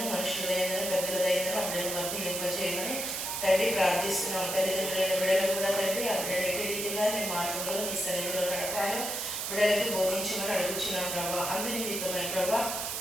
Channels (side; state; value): right; noise; hiss, 3 dB below the sound